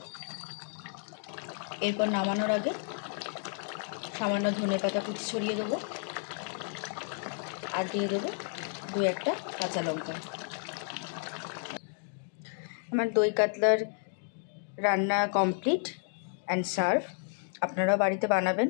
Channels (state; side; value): silent; right; 57 dB below the other